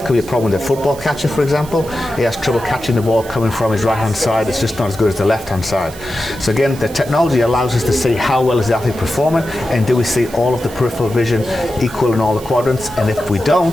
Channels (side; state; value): right; noise; hiss, 18 dB below the sound